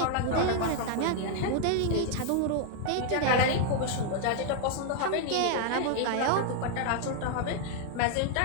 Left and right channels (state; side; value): different; both; correlation 0.00